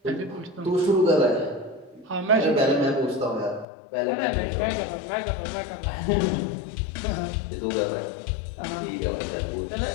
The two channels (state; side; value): drops out; right; at 3.7 s